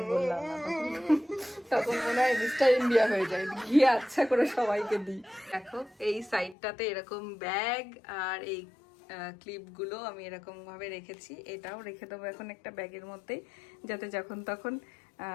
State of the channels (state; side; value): drops out; right; at 6.6 s